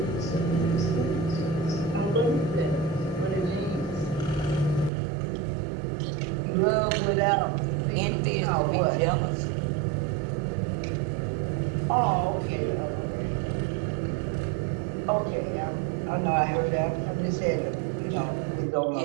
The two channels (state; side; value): drops out; left; at 4.9 s